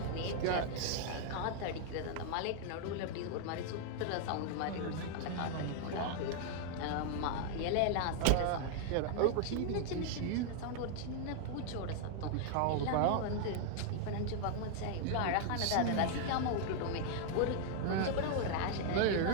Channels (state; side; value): different; both; correlation 0.00